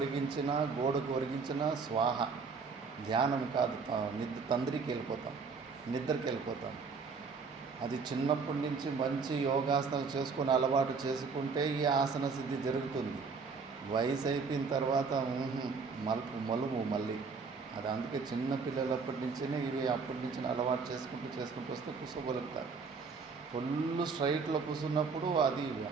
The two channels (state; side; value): quieter; left; 5.0 dB